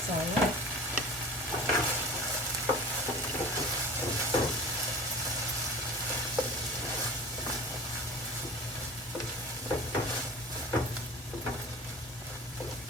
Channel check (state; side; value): normal; both; correlation 0.38